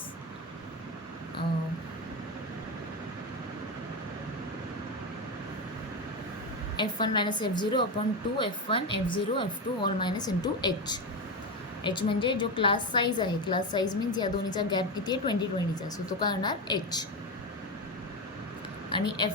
F1 - F0/2 F1 F0 F2 all minus into H. H म्हणजे जो क्लास साईज आहे, क्लास साईज मीन्स या दोन्हीचा गॅप किती आहे, 20-20चा. सो तो काय होणार H. आणि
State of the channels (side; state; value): both; normal; correlation 0.15